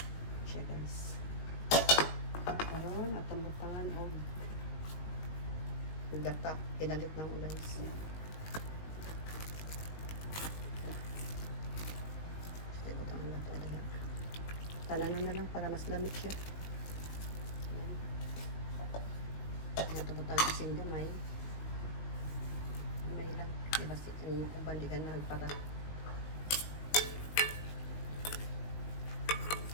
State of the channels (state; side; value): late; right; 19 ms